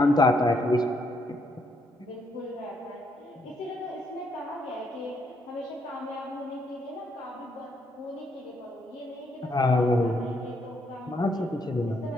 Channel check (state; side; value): normal; both; correlation 0.74